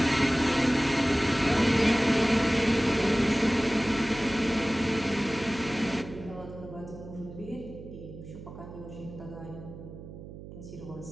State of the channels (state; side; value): noise; right; hum, 14 dB below the sound